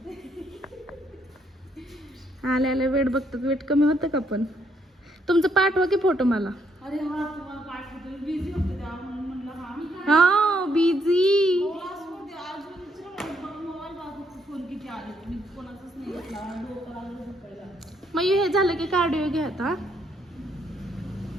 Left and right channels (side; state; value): both; normal; correlation 0.72